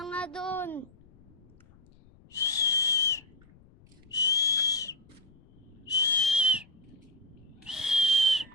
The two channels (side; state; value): left; noise; rumble, 27 dB below the sound